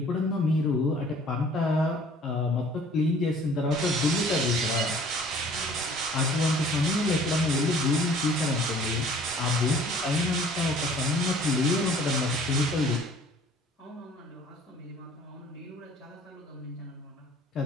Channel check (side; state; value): both; normal; correlation 0.52